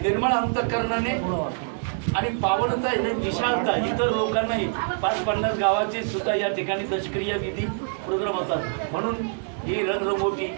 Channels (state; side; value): silent; left; digital silence